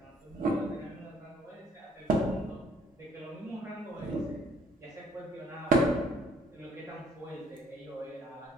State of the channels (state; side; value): normal; both; correlation 0.62